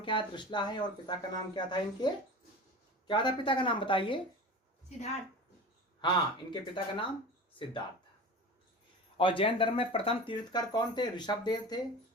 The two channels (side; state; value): both; normal; correlation 0.33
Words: है? त्रिशला है। और पिता का नाम क्या था इनके? क्या था पिता का नाम बताइए? सिद्धार्थ। हाँ, इनके पिता का नाम सिद्धार्थ था। और जैन धर्म में प्रथम तीर्थकर कौन थे? ऋषभदेव थे,